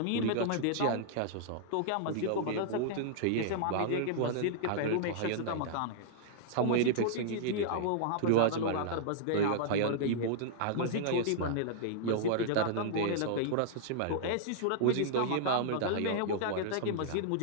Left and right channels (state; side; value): different; both; correlation -0.02